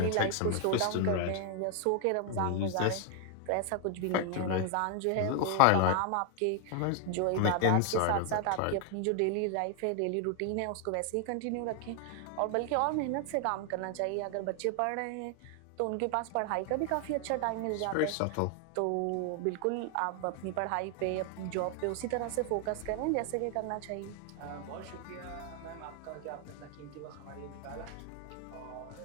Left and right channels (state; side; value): different; both; correlation 0.00